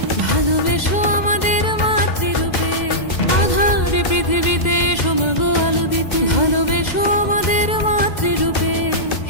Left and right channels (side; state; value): right; late; 2.0 ms